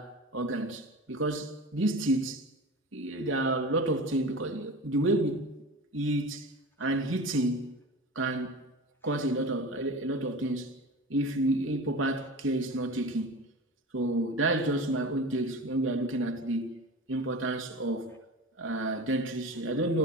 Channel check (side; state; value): both; normal; correlation 0.33